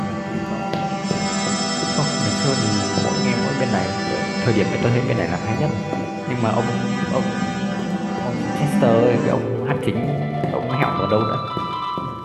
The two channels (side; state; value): both; identical; correlation 1.00